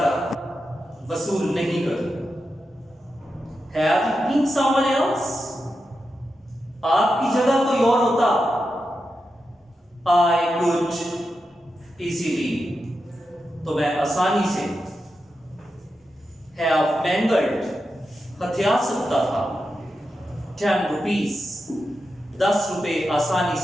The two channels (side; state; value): both; normal; correlation 0.89